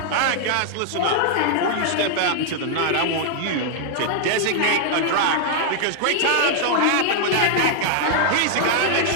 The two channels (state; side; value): different; both; correlation 0.00